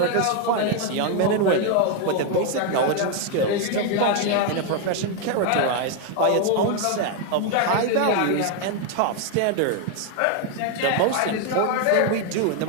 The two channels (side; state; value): both; different; correlation 0.01